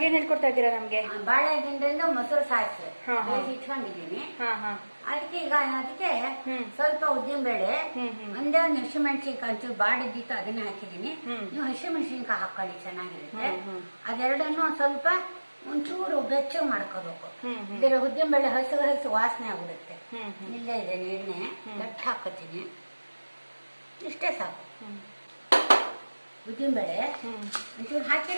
ಏನ್ ಹೇಳ್ಕೊಡ್ತಾ ಇದ್ದೀರಾ ನಮ್ಗೆ? ಬಾಳೆದಿಂಡಿಂದ ಮೊಸರು ಸಾಸಿವೆ ಬೇಯಿಸಿ ಇಟ್ಕೊಂಡಿದ್ದೀನಿ. ಅದಕ್ಕೆ ಈಗ ಅದಕ್ಕೆ ಸ್ವಲ್ಪ ಉದ್ದಿನಬೇಳೆ, ಒಂದೇ ಒಂದು ಹಸಿಮೆಣಸಿನ್ಕಾಯಿ ಒಂಚೂರು ಬಾಡಿದ್ದಿತ್ತು ಅದನ್ನ ಹಾಕಿದ್ದೀನಿ. ನೀವು ಹಸಿಮೆಣಸಿನ್ಕಾಯಿ ಹಾಕೊಳ್ಳಿ, ಚೆನ್ನಾಗಿರುತ್ತೆ. ಅದೆರಡನ್ನು ಸ್ವಲ್ಪ ಒಂಚೂರು ಬೆಚ್ಚಗೆ ಮಾಡ್ಕೋಬೇಕು. ಇದರ ಉದ್ದಿನಬೇಳೆ ಹಸಿ ವಾಸನೆ ಆಗ್ಬಿಡುತ್ತೆ. ಇಲ್ಲೇ ಇದೆ ಎಣ್ಣೆ ಗಟ್ಟಿ ಹಾಕೋತೀನಿ, ಇಷ್ಟೇ ಸಾಕು. ಉದ್ದಿನಬೇಳೆ ಒಂಚೂರು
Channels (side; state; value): both; inverted; correlation -1.00